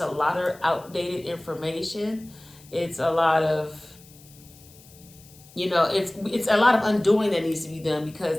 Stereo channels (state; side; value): noise; left; hiss, 24 dB below the sound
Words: a lot of outdated information. It's a lot of, you know, it's a lot of undoing that needs to be done, because